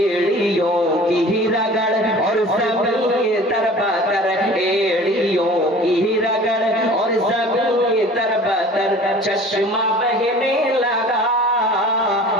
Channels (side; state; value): both; normal; correlation 0.44